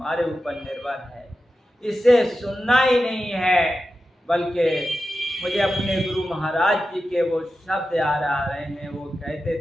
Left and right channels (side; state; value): both; normal; correlation 0.92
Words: ऊपर निर्भर है। इसे सुनना ही नहीं है, बल्कि मुझे अपने गुरु महाराज जी के वो शब्द याद आ रहे हैं। वो कहते